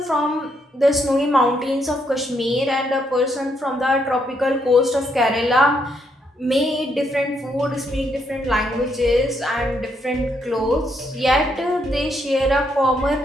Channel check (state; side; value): normal; both; correlation 0.75